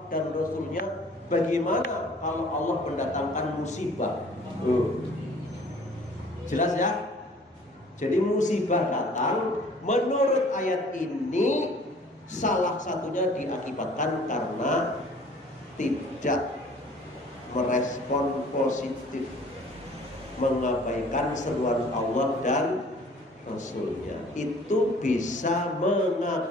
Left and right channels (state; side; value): normal; both; correlation 0.52